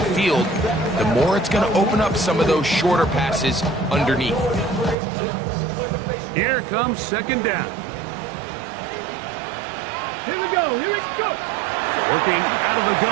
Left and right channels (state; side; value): drops out; left; at 5.0 s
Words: the more it's going to open up some of those shorter passes underneath. Here comes second down. Here we go. Working out of the